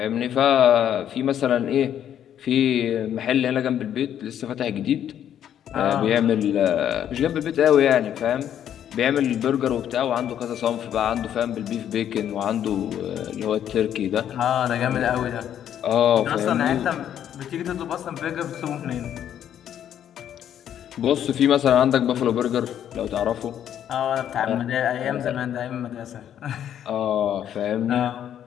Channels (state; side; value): quieter; right; 10.0 dB